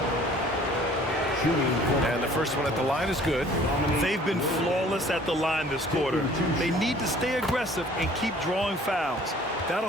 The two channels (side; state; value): both; normal; correlation 0.53